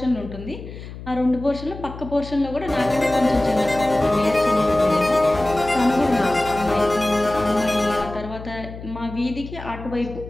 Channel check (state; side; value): noise; left; hum, 12 dB below the sound